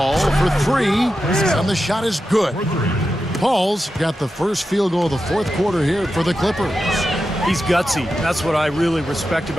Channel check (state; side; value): normal; both; correlation 0.90